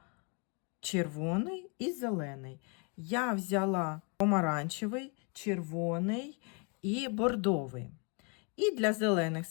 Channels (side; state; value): right; quieter; 35.4 dB